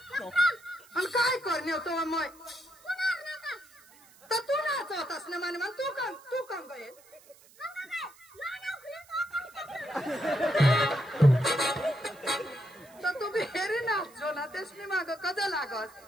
आणि काय करणे होतो मग तर तू नाचवतास ना माने तू काम गये तर तू बेरी नाचो ना तेसनी माग कद लागस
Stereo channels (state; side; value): noise; right; hiss, 25 dB below the sound